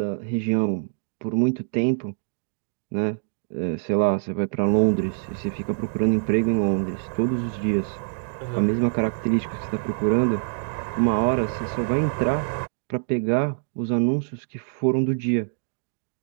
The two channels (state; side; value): silent; left; digital silence